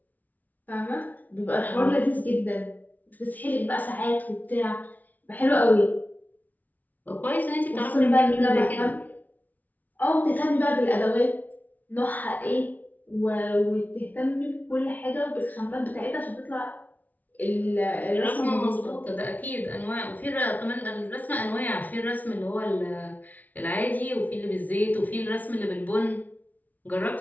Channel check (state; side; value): late; right; 0.077 ms